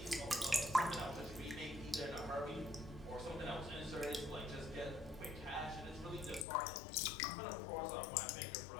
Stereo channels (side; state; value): right; drops out; at 6.5 s